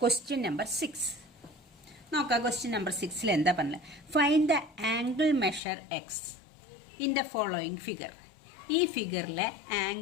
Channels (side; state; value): right; drops out; at 5.6 s